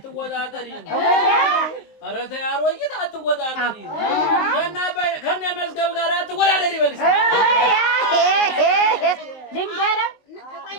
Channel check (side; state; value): right; late; 19 ms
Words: ኧረ ተይ አሮጊት አትወጣጠሪ። ከእነ መዝገብ ጋር አትወዳደሪ በልሽ። ልንገረው